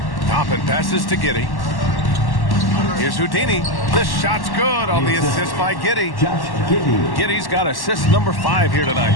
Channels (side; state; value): right; late; 1.1 ms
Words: Toppin passes to Giddey. Here's Houdini. The shot's good on the assist by Giddey. Giddey's got assist number 5 here tonight.